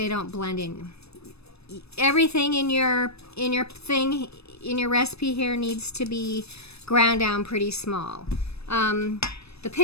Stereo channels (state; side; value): late; right; 0.78 ms